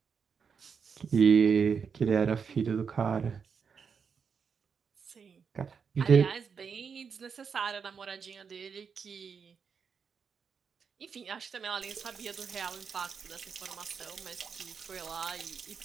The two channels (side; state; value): left; quieter; 6.2 dB